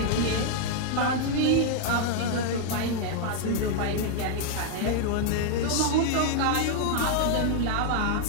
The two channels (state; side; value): different; both; correlation 0.00